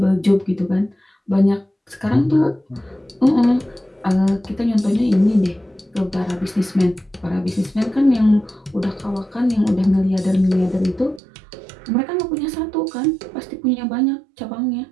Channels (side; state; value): left; drops out; at 11.2 s